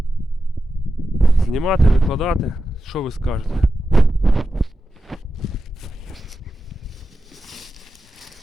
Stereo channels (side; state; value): both; normal; correlation 0.91